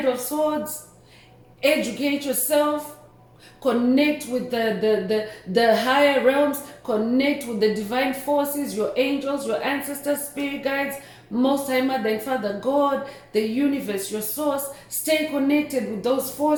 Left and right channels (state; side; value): identical; both; correlation 1.00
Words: of Swords. Educate yourself. Connect with the higher realms. Connect with the divine forces, your angels, your ancestors, spirit guides, Most High Mother and Father God, the universe, your source. Stay connected with those